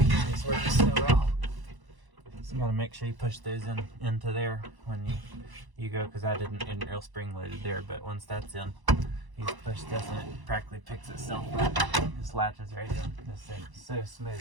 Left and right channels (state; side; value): late; left; 1.0 ms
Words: just works so well. So you gotta make sure you push those into there when you go, because I didn't real spring loaded there, but once that's in, you just push this and it practically picks itself up. It just latches right in. This thing is so